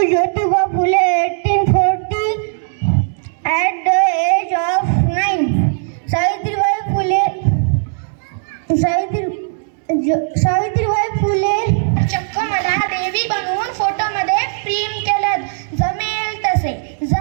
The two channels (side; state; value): left; silent; digital silence